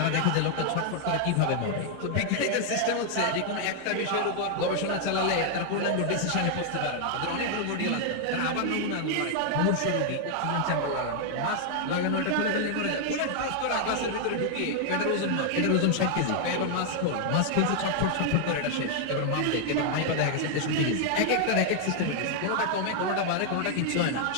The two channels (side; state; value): both; different; correlation 0.00